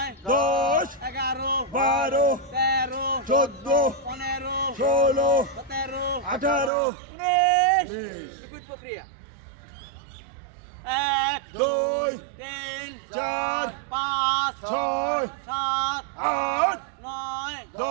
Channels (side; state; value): left; drops out; at 6.7 s